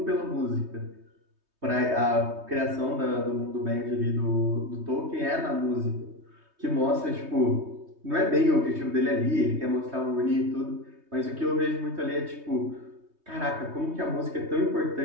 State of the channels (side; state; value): left; late; 3.2 ms